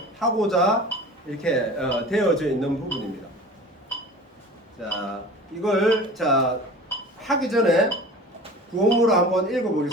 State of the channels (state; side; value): normal; both; correlation 0.39